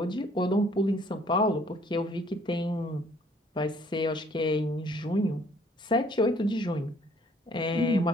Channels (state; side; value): normal; both; correlation 0.60